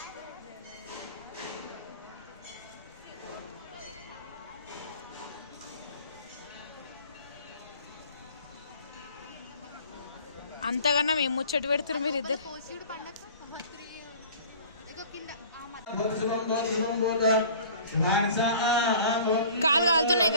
అంతకన్నా మేము ముచ్చట పెడుతున్నారు మీరు ఇద్దరు. కాలు కాలుతున్నాయి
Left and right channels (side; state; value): both; inverted; correlation -0.47